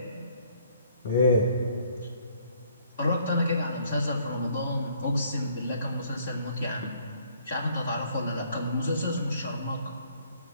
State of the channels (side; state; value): both; inverted; correlation -0.62